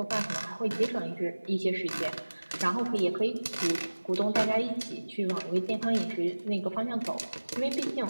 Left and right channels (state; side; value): inverted; both; correlation -1.00